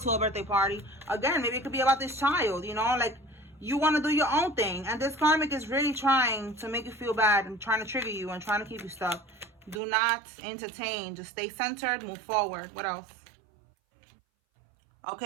a birthday party. Again, maybe it could be about this child, you know, like you want to do your own thing. And this karmic is really trying to make you feel bad and trying to trigger you and trying to keep you stuck. Do not entertain. Just stay centered. Move forward. What else?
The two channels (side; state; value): left; drops out; at 9.8 s